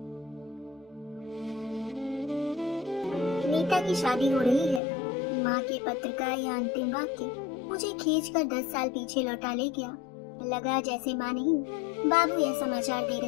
नीता की शादी हो रही है। माँ के पत्र का यह अंतिम वाक्य मुझे खींचकर 10 साल पीछे लौटा ले गया। लगा जैसे माँ नहीं बाबू यह समाचार दे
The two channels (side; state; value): right; drops out; at 4.8 s